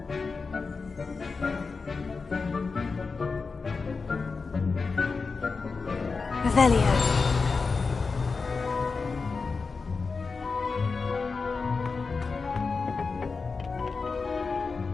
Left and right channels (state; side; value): quieter; right; 4.5 dB